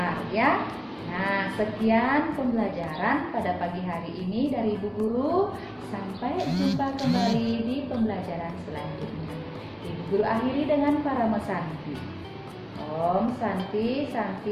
ya. Nah, sekian pembelajaran pada pagi hari ini dari Ibu Guru. Sampai jumpa kembali di pembelajaran selanjutnya. Ibu Guru akhiri dengan Parama Santi. Om Santi,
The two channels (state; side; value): identical; both; correlation 1.00